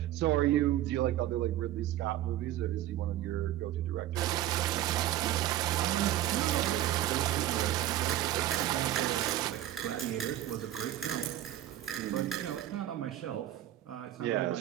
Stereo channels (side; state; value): left; quieter; 13.2 dB